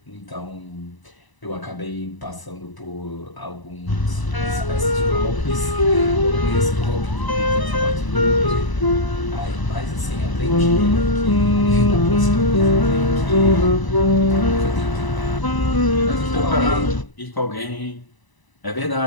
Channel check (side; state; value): right; late; 1.0 ms